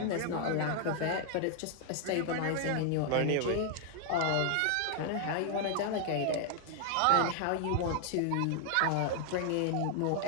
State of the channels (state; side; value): different; both; correlation 0.00